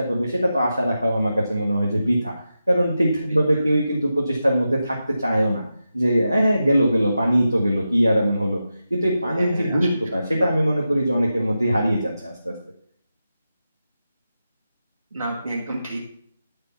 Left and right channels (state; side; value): inverted; both; correlation -0.90